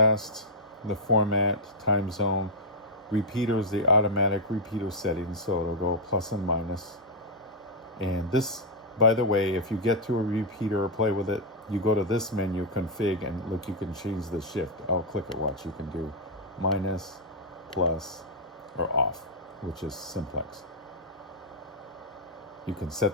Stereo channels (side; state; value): both; normal; correlation -0.04